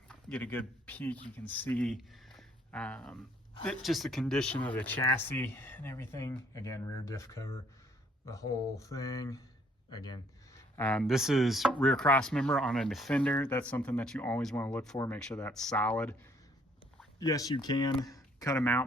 get a good peek. You can see just the condition of the chassis and everything. Again, rear diff cover, the whole thing. Again, this is rear cross member on a Defender. That's something that you always want to look for. Make sure that's solid. Yes, you can cut them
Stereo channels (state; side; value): normal; both; correlation 0.64